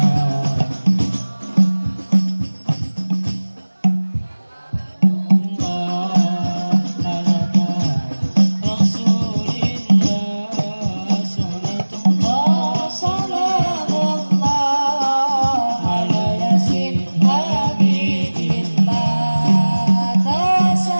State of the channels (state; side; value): inverted; both; correlation -1.00